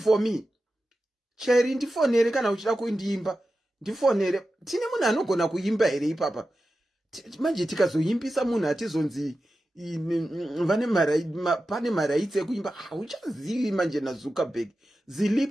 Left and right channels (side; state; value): both; normal; correlation 0.92